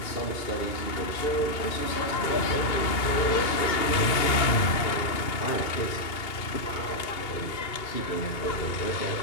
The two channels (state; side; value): late; right; 2.2 ms